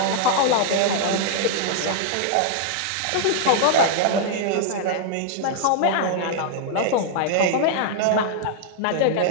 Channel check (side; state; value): both; different; correlation 0.00